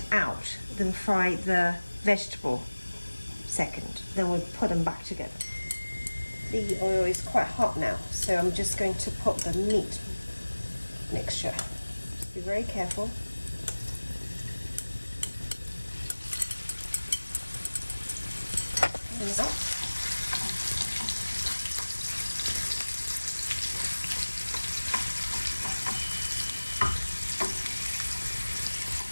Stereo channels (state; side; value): inverted; both; correlation -1.00